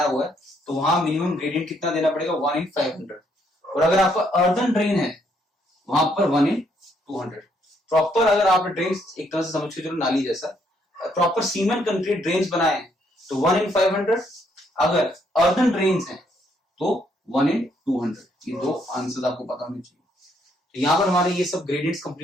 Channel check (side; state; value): both; normal; correlation 0.71